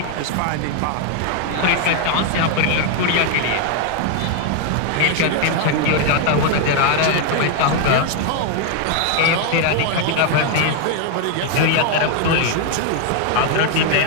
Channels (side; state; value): both; different; correlation 0.01